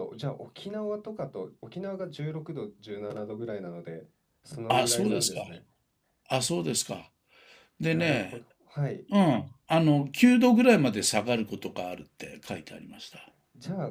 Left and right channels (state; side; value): identical; both; correlation 1.00